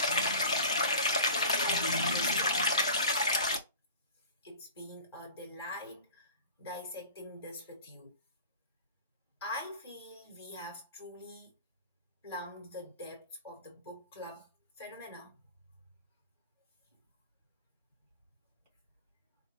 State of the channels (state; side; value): inverted; both; correlation -0.40